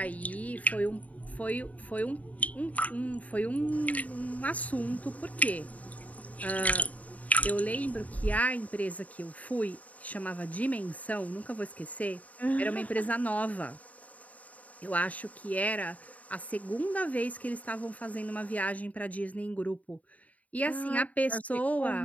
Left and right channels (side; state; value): right; late; 0.071 ms